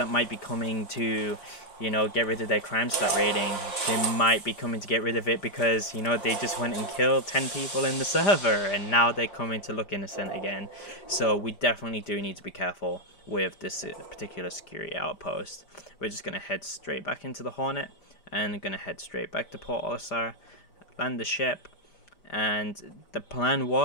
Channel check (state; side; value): late; right; 5.0 ms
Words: might be coming to, you know, get rid of their crime stat rating. They might be coming to get rid of it because, you know, they just went and killed 10 people in the server, and now they're coming to look innocent again. So we definitely do need to be careful with this particular security outpost. We're just going to head straight back into the Hornet, and going to head straight back to Port Olisar, land the ship, and the plan